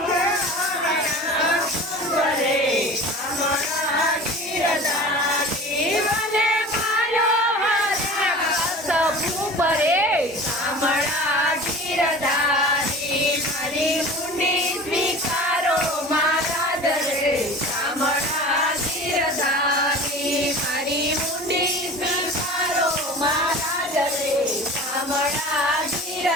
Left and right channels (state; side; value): normal; both; correlation 0.38